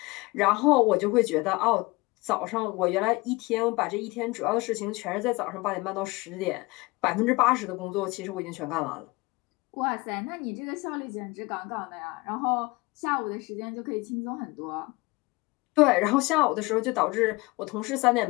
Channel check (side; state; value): right; quieter; 23.5 dB